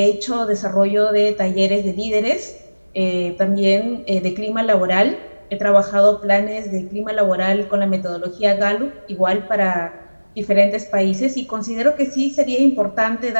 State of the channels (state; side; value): inverted; both; correlation -1.00